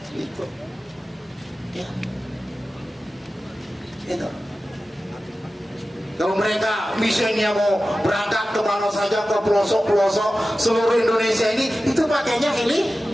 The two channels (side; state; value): both; normal; correlation 0.95